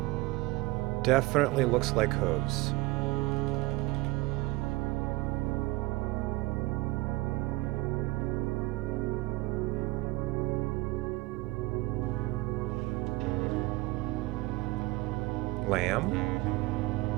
definitely looks like hooves. Lamb?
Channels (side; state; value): left; quieter; 20.7 dB